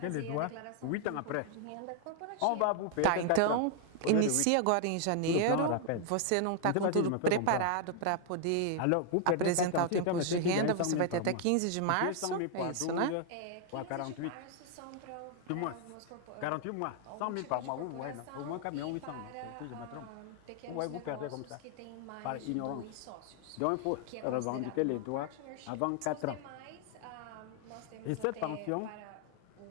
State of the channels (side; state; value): both; different; correlation 0.00